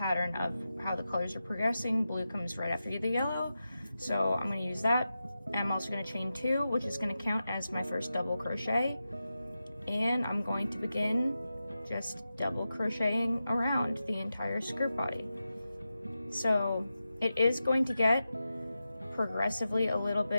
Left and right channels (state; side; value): inverted; both; correlation -0.91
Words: of how the colors are progressing, blue comes right after the yellow. So I'm gonna use that. And I'm also gonna chain 2, which is gonna count as my first double crochet. And I'm going to begin just double crocheting around the entire skirt body. So it is going to get progressively a little